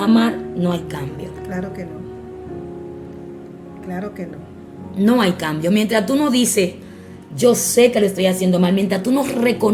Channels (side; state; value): both; identical; correlation 1.00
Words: mal, no hay cambio. Claro que no. Claro que no. No hay cambio. Mientras tú no dices: yo sé que lo estoy haciendo mal, mientras tú no